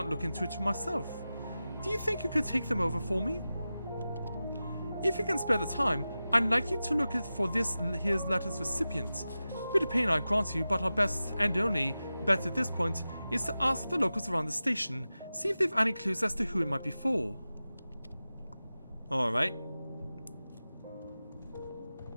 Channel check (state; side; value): inverted; both; correlation -0.94